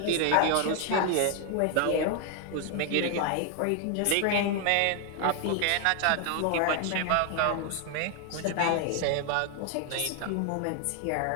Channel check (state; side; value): different; both; correlation 0.00